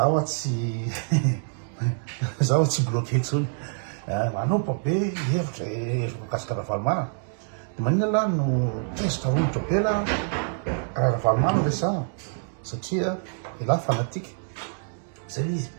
tsy zaho tsy bloqué intsony manompo be hevitra mikasika Ravalomanana. De maninona lahy no tezitra aromotra be la raha Ravalomanana resaha satria ilahy fanatika zay izy.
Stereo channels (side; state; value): left; silent; digital silence